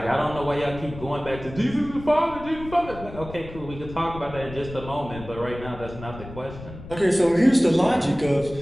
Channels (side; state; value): left; noise; rumble, 14 dB below the sound